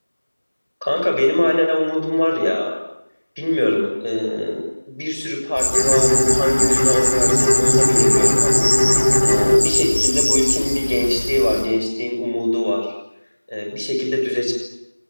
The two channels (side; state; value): both; inverted; correlation -1.00